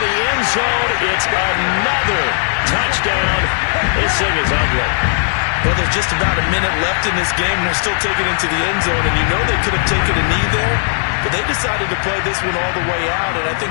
end zone. It's another touchdown. This thing is ugly. Well, there's just about a minute left in this game, and they're still taking it into the end zone. And you know they could have taken a knee there, but they decided to play this one all the way out. And I think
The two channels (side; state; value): right; silent; digital silence